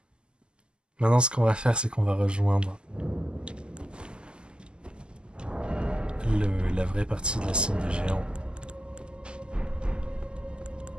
Maintenant, ce qu'on va faire, c'est qu'on va rejoindre la vraie partie de la cime des géants.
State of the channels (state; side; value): late; left; 0.048 ms